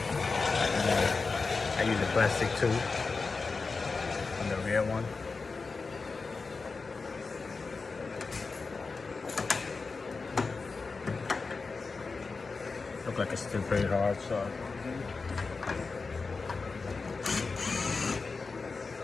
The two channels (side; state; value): right; quieter; 4.3 dB